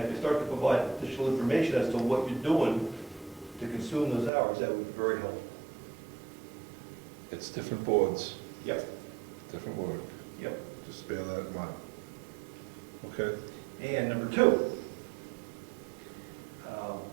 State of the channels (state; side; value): drops out; left; at 4.3 s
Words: if you start to provide additional information as to what you're doing to consume those hours, that would be very helpful. It's different boards, Yep. different work. Yep. Just bear that in mind. Okay? And number 2,